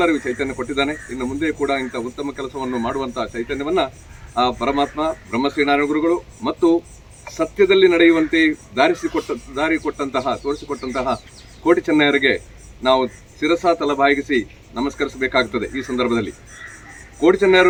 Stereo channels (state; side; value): identical; both; correlation 1.00